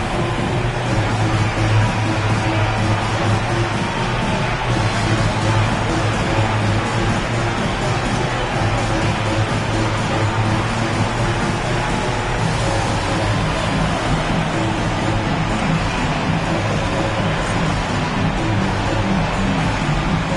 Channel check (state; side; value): identical; both; correlation 1.00